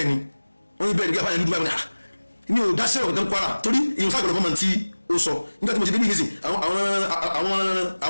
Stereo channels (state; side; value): inverted; both; correlation -1.00